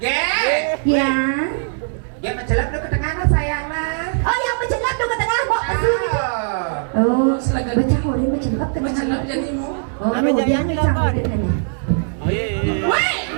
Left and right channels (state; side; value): silent; left; 62 dB below the other